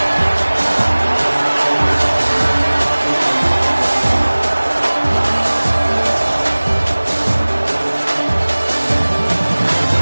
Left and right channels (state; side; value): inverted; both; correlation -1.00